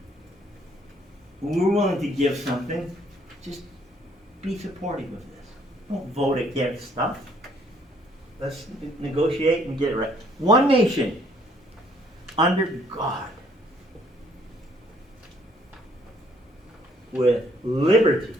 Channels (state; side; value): normal; both; correlation 0.64